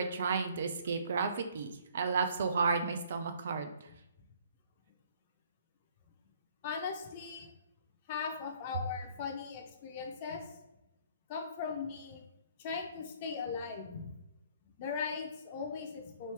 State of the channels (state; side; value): inverted; both; correlation -0.59